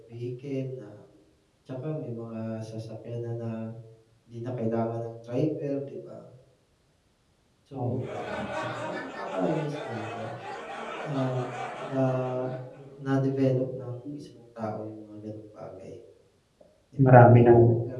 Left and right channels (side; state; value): both; identical; correlation 1.00